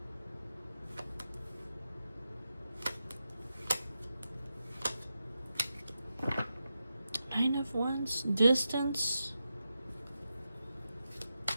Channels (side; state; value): both; inverted; correlation -0.89